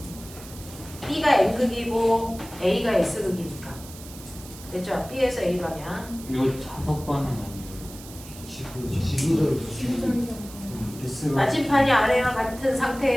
B가 N극이고 A가 S극이니까 됐죠? B에서 A 방향. 이거 자석반은 아니에요. 나침판이 아래와 같은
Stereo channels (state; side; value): noise; right; hiss, 17 dB below the sound